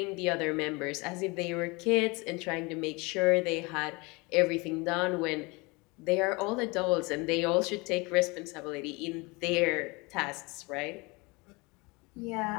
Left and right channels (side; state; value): right; quieter; 26.4 dB